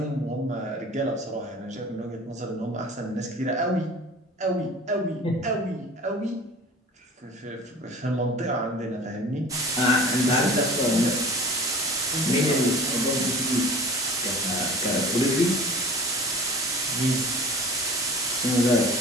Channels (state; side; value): normal; both; correlation 0.40